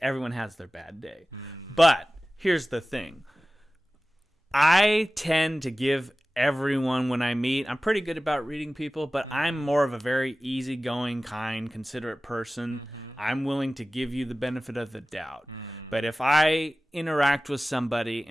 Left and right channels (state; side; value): normal; both; correlation 0.97